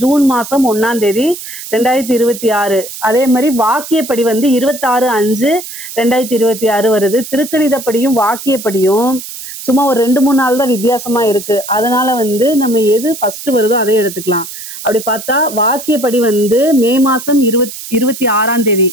ஜூன் மாசம் 1ஆம் தேதி 2026. அதே மாதிரி வாக்கியப்படி 26/5/2026 வருது. திருக்கணிதப்படியும் வாக்கியப்படியும் சும்மா ஒரு 2-3 நாள் தான் வித்தியாசமா இருக்கு. அதனால நம்ம எது ஃபர்ஸ்ட் வருதோ அதை எடுத்துக்கலாம். அப்படி பார்த்தா வாக்கியப்படி மே மாசம் 26ஆம் தேதி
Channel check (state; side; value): noise; right; hiss, 11 dB below the sound